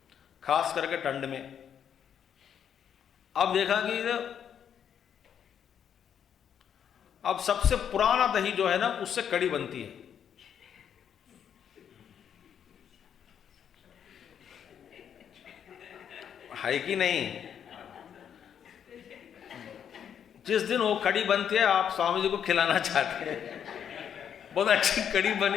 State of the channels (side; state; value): right; quieter; 8.5 dB